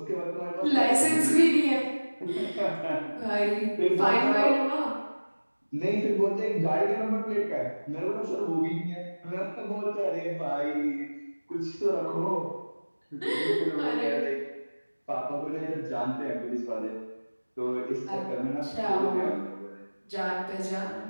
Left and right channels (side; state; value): both; inverted; correlation -1.00